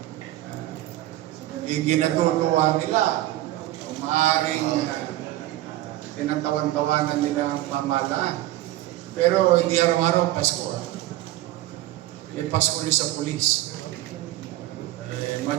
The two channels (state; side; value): quieter; left; 15.6 dB